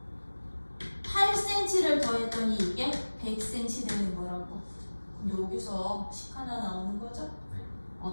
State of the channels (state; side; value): inverted; both; correlation -1.00